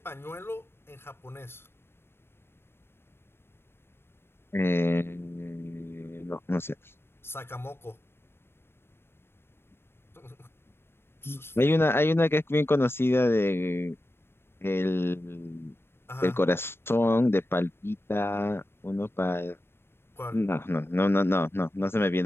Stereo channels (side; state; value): right; late; 0.11 ms